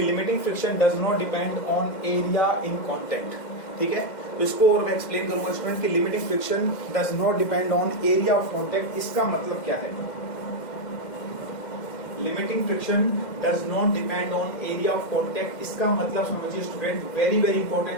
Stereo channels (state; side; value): late; right; 2.1 ms